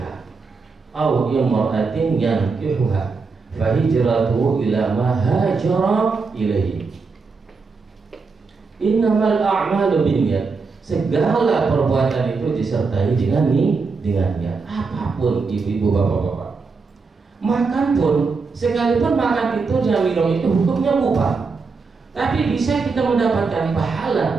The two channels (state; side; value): quieter; left; 4.6 dB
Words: aw imra'atin yankihuha fa hijratuhu ila ma hajara ilaihi. Innamal a'malu binniyat, segala perbuatan itu disertai dengan niat. Apapun ibu-ibu, bapak-bapak, makan pun, sekalipun makan itu dan minum itu hukumnya mubah, tapi bisa kita mendapatkan